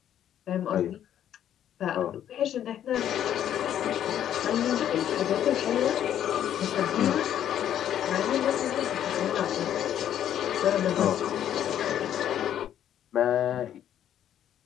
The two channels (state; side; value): quieter; right; 10.5 dB